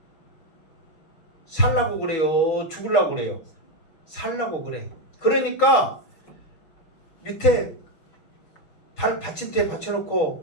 살라고 그래요? 죽으려고 그래요? 살라고 그래. 그러니까 밑에 받침대에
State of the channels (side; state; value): right; late; 6.2 ms